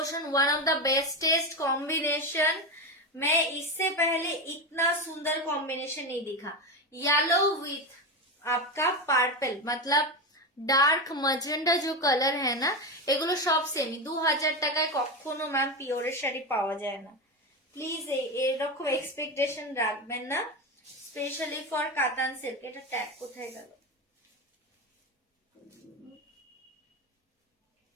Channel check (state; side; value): normal; both; correlation 0.17